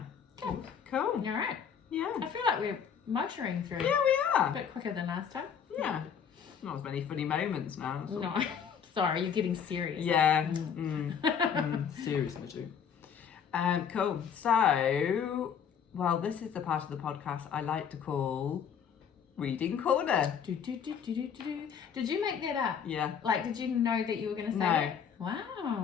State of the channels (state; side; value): quieter; right; 7.5 dB